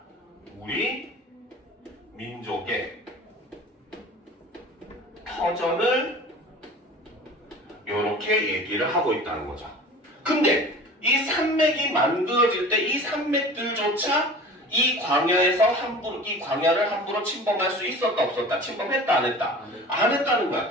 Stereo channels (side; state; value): both; normal; correlation 0.40